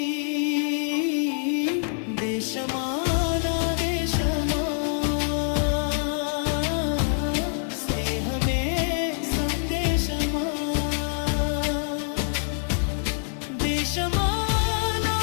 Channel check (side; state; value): right; silent; 57 dB below the other